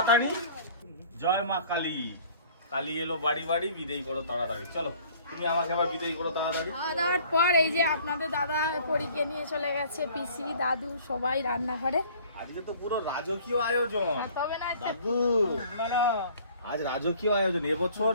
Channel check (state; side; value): inverted; both; correlation -0.52